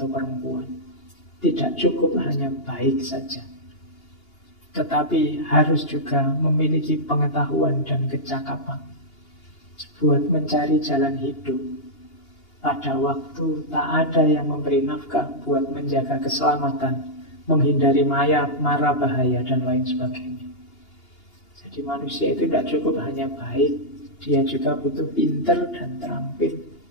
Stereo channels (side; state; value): right; late; 2.8 ms